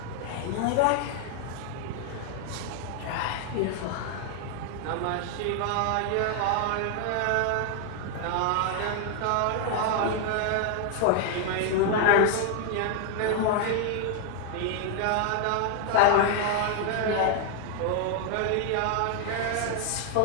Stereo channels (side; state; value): both; different; correlation 0.00